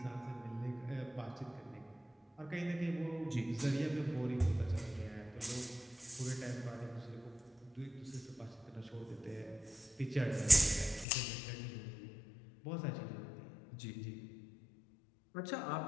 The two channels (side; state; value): right; drops out; at 11.1 s